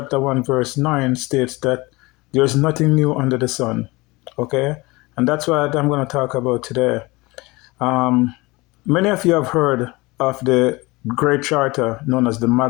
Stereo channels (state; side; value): quieter; right; 22.9 dB